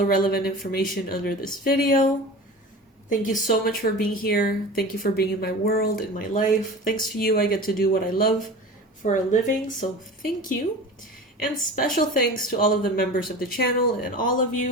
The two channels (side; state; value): both; normal; correlation 0.34